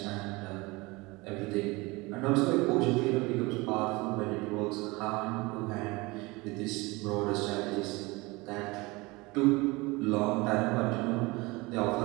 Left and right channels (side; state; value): left; quieter; 23.7 dB